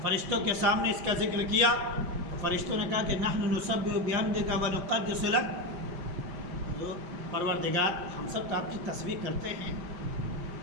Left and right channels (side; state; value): left; late; 5.3 ms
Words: فرشتوں کے سامنے اس کا ذکر کیا تو فرشتوں نے کہا کہ نحن نسبح بحمدک ونقدس لک، پروردگار ہم سب تو آپ کی تسبیح کرتے ہیں،